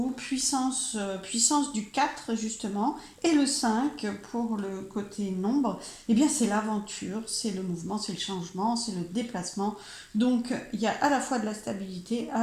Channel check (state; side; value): identical; both; correlation 1.00